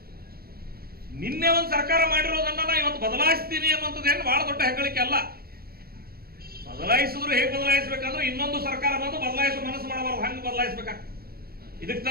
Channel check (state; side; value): late; left; 0.44 ms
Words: ನಿನ್ನೆ ಒಂದು ಸರ್ಕಾರ ಮಾಡಿರೋದನ್ನ ನಾ ಇವತ್ತು ಬದಲಾಯಿಸ್ತೀನಿ ಅನ್ನುವಂಥದ್ದೇನು ಬಹಳ ದೊಡ್ಡ ಹೆಗ್ಗಳಿಕೆ ಅಲ್ಲ. ಬದಲಾಯಿಸಿದ್ರು ಹೇಗೆ ಬದಲಾಯಿಸಬೇಕಂದ್ರೆ ಇನ್ನೊಂದು ಸರ್ಕಾರ ಬಂದು ಬದಲಾಯಿಸುವ ಮನಸ್ಸು ಮಾಡಬಾರ್ದು, ಹಂಗೆ ಬದಲಾಯಿಸಬೇಕಾಗ್ತದೆ. ಇದಕ್ಕೆ